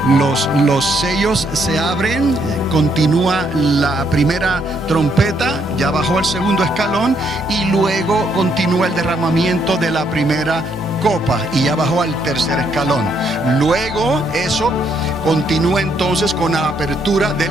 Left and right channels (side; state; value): both; normal; correlation 0.72